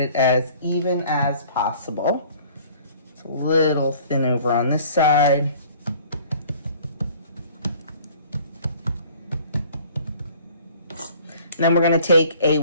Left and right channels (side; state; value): both; inverted; correlation -0.52